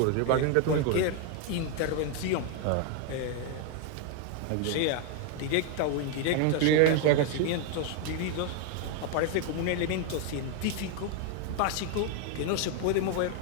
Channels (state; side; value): different; both; correlation 0.01